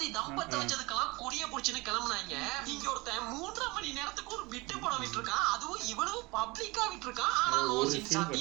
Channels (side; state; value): left; quieter; 23.8 dB